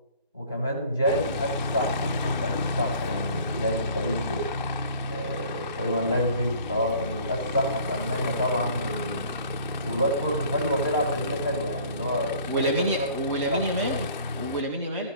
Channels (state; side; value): inverted; both; correlation -0.51